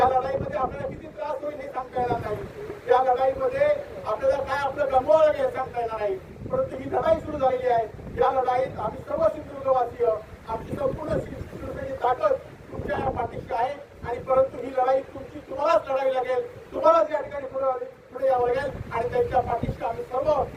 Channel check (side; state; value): both; identical; correlation 1.00